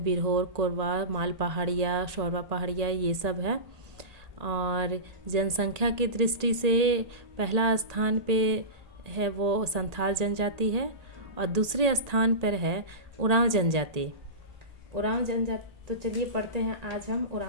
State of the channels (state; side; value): late; left; 1.8 ms